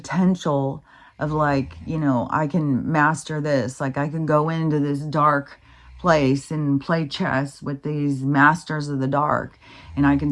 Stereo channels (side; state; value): both; identical; correlation 1.00